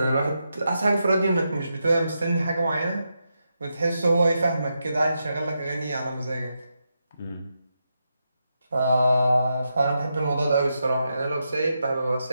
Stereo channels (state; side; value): inverted; both; correlation -0.85